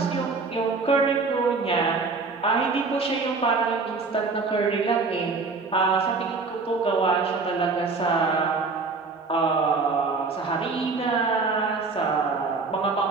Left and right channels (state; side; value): quieter; left; 4.2 dB